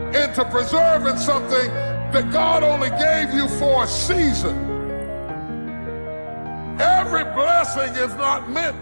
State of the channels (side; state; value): both; inverted; correlation -1.00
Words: into preserving something that God only gave you for a season. Every blessing is not